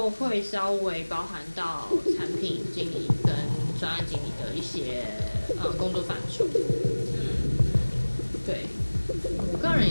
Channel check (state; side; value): inverted; both; correlation -1.00